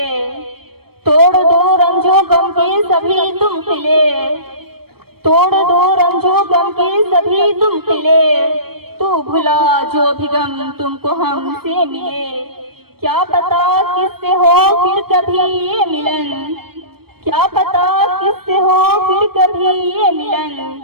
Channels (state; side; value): late; left; 0.95 ms